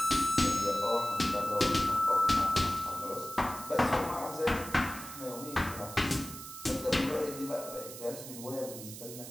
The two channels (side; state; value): right; noise; hiss, 12 dB below the sound